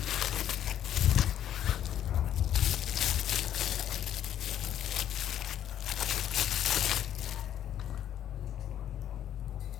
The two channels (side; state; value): right; quieter; 10.7 dB